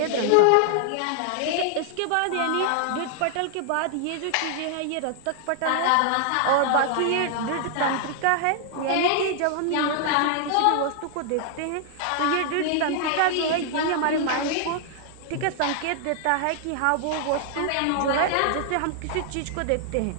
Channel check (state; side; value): different; both; correlation 0.00